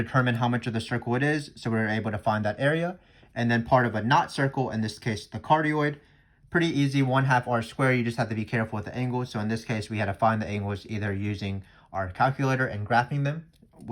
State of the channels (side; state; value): both; identical; correlation 1.00